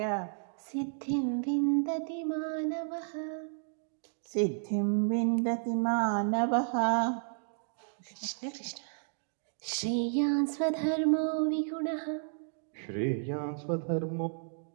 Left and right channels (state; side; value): silent; left; digital silence